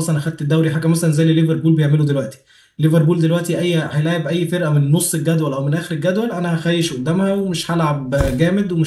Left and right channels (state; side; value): identical; both; correlation 1.00